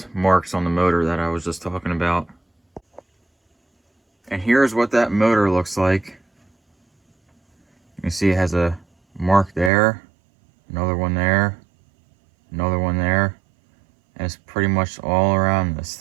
marks on the motor that I was just talking about. And here's what that motor looks like. You can see it has a mark there, another one there, another one there, and it's pretty much all around this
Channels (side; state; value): left; drops out; at 9.7 s